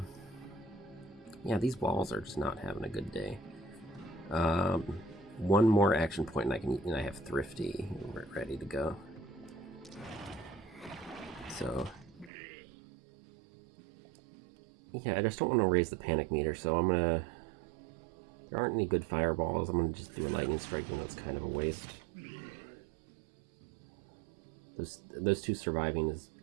Yeah, these walls are just not having a good day. One more action point and I have Thrifty ready to go. So yeah, I just don't want to raise the panic meter, so I'm gonna... There aren't any good fireballs. I'm gonna just do a lightning strike, even though it's kind of a waste. Those two surviving is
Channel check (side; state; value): left; drops out; at 12.3 s